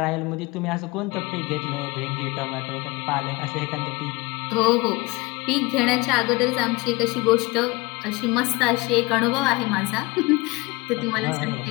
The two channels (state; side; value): quieter; right; 23.1 dB